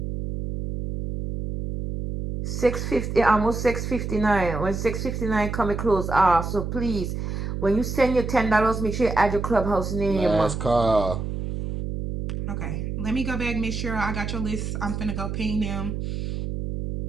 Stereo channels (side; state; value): right; noise; hum, 4 dB below the sound